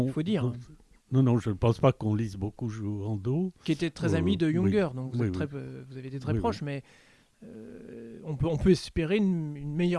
il faut dire. non, je ne pense pas qu'on lise beaucoup Jouandeau. Qui était très ami de Junger, oui, donc vous, oui, êtes oui. vous avez été très Oui, proches, oui. mais on peut espérer une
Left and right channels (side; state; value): both; identical; correlation 1.00